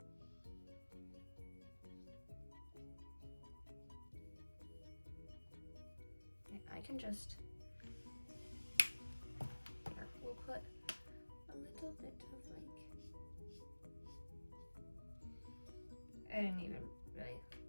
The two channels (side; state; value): both; inverted; correlation -1.00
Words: I can just, here, we'll put a little bit of like, I didn't even really